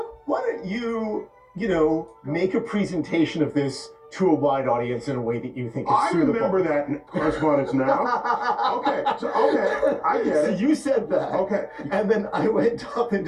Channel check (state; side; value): identical; both; correlation 1.00